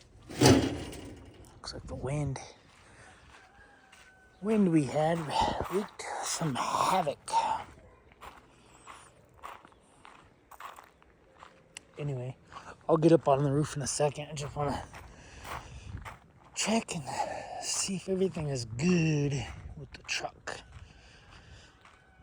Looks like the wind we had wreaked some havoc. Anyway, I'll get up on the roof in a second. I just want to check and see if everything is good with the truck.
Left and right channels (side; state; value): both; identical; correlation 1.00